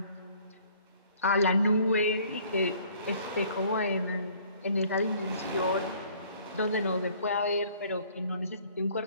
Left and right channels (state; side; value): inverted; both; correlation -0.57